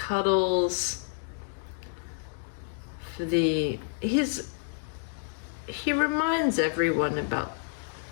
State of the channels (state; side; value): silent; right; digital silence